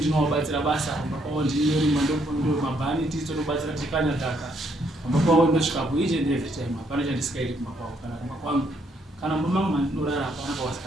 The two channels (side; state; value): both; normal; correlation 0.72